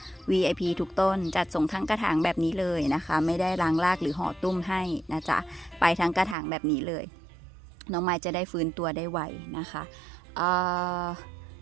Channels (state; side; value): drops out; left; at 6.4 s